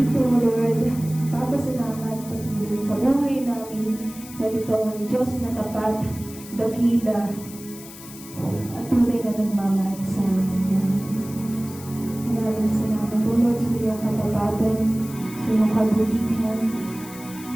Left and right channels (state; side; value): noise; left; hiss, 16 dB below the sound